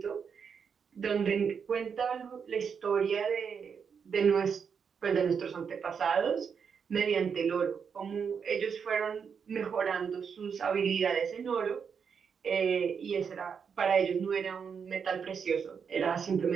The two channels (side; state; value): left; quieter; 6.6 dB